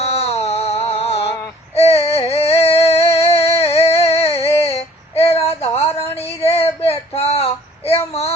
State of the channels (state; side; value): normal; both; correlation 0.55